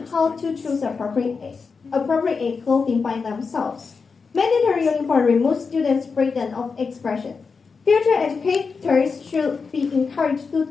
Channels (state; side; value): quieter; right; 5.0 dB